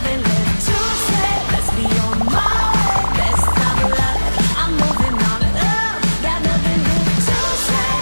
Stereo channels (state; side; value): inverted; both; correlation -1.00